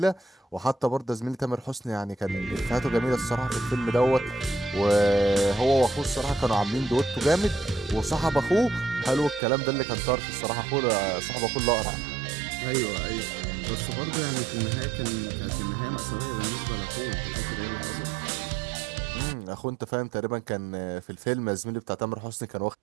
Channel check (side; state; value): left; drops out; at 9.4 s